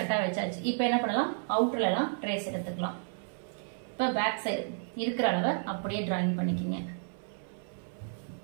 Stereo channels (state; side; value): silent; left; 57 dB below the other